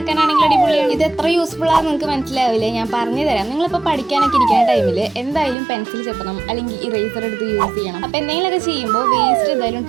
അടിപൊളിയാണ്. ഇത് എത്ര യൂസ്ഫുൾ ആണെന്ന് നിങ്ങൾക്ക് മനസ്സിലാവില്ലേ, ഞാൻ പറഞ്ഞു തരാം. നിങ്ങളിപ്പോൾ പഠിക്കാനൊക്കെ ഇരിക്കുന്ന ടൈമിൽ എന്തായാലും പെൻസിൽ ചെത്തണം, അല്ലെങ്കിൽ ഇറേസർ എടുത്ത് യൂസ് ചെയ്യണം. അപ്പോൾ എന്തെങ്കിലുമൊക്കെ ചെയ്യുമ്പോൾ വേസ്റ്റ് എന്തായാലും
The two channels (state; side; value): drops out; left; at 5.6 s